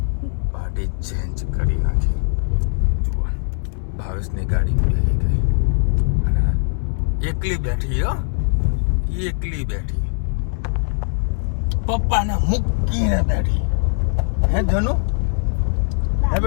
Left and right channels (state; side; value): silent; right; 62 dB below the other